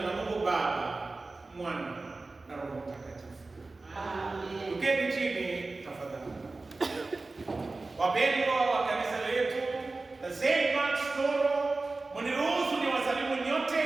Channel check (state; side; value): quieter; left; 3.5 dB